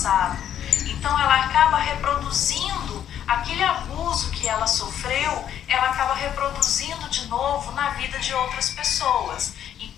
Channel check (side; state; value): right; quieter; 10.1 dB